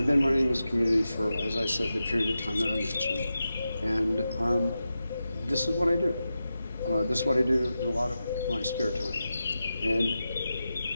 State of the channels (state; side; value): inverted; both; correlation -0.91